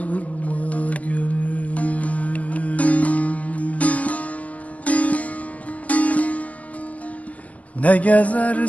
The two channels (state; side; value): late; right; 0.069 ms